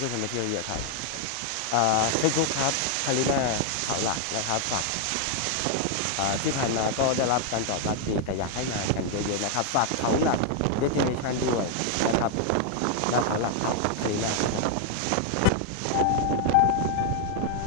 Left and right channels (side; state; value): both; different; correlation 0.00